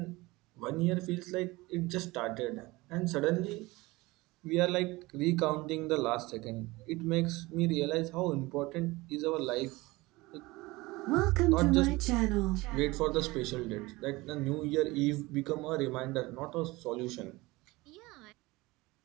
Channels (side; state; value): left; quieter; 21.5 dB